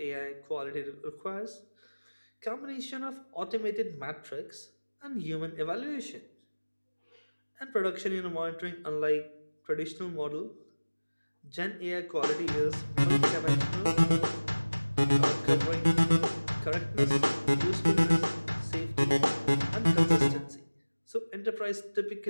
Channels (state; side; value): inverted; both; correlation -1.00